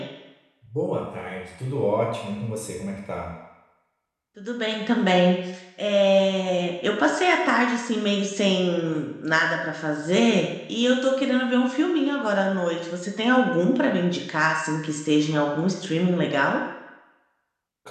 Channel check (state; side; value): identical; both; correlation 1.00